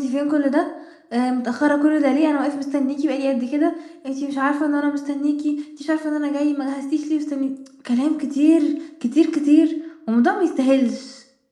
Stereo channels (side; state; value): both; identical; correlation 1.00